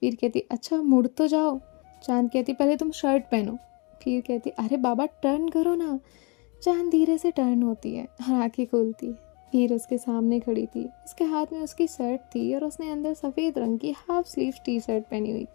वीर कहती अच्छा मुड़ तो जाओ। चांद कहती पहले तुम शर्ट पहनो। वीर कहती अरे बाबा टर्न करो ना। चांद धीरे से टर्न होती है और आंखें खोलती है। वीर उसके सामने खड़ी थी। उसके हाथ में उसकी शर्ट थी और उसने अंदर सफ़ेद रंग की हाफ स्लीव टी शर्ट पहनी हुई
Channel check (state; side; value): quieter; right; 31.2 dB